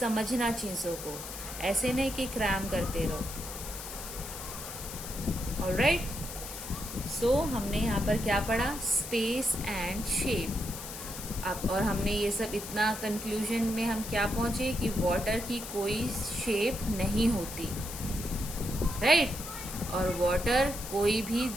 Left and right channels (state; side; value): noise; left; hiss, 9 dB below the sound